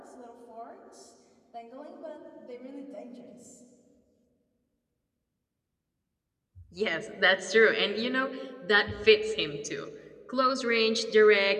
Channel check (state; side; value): identical; both; correlation 1.00